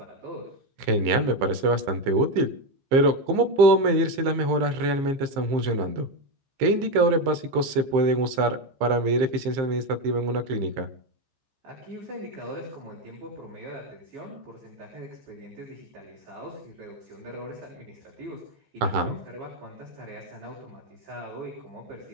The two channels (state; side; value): late; left; 15 ms